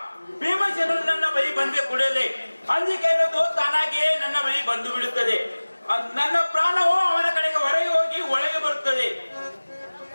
ಭೀಮಸೇನರು ನನ್ನ ಬಳಿ ಬಂದ ಕೂಡಲೇ ಅಂಜಿಕೆ ಅನ್ನೋದು ತಾನಾಗಿಯೇ ನನ್ನ ಬಳಿ ಬಂದು ಬಿಡುತ್ತದೆ. ನನ್ನ ಪ್ರಾಣವು ಅವನ ಕಡೆಗೆ ಹೊರಗೆ ಹೋಗಿ ಒಳಗೆ ಬರುತ್ತದೆ.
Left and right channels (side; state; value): both; inverted; correlation -1.00